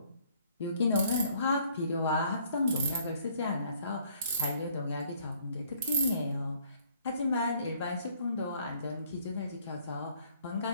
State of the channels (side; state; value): both; inverted; correlation -0.62